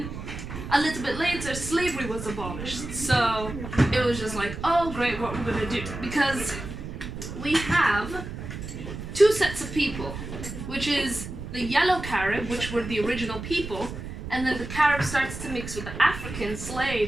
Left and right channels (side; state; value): right; noise; rumble, 8 dB below the sound